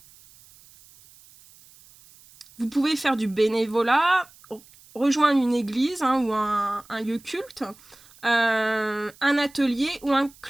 Vous pouvez faire du bénévolat, rejoindre une église ou un lieu culte, un atelier ou un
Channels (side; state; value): right; noise; hiss, 25 dB below the sound